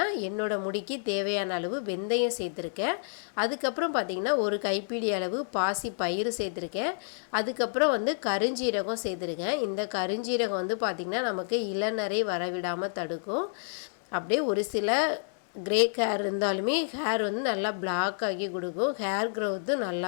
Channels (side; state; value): right; silent; digital silence